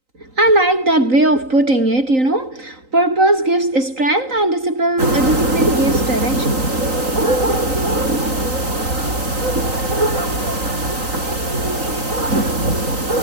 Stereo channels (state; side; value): late; left; 3.9 ms